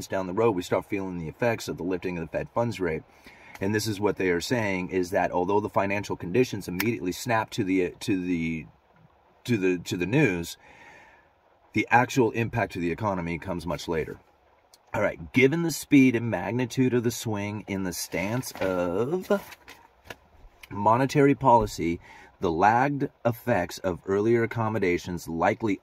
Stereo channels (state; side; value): identical; both; correlation 1.00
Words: down the road, we start feeling the effects of the lifting of the Fed funds rate. And this is what they are saying, is that although the financial conditions immediately snap to the news, the actual impact to the economy comes much later. All right, given the speed and magnitude of the swing in the stance of monetary policy, the lagged effects of earlier accommodations likely